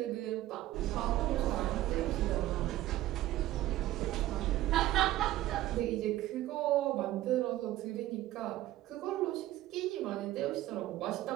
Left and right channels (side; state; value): left; quieter; 15.1 dB